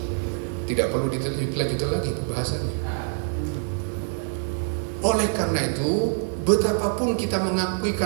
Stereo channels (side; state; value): left; silent; 62 dB below the other